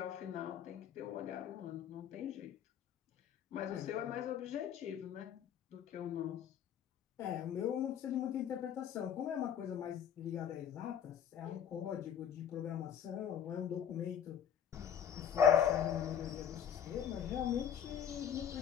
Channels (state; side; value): quieter; right; 8.8 dB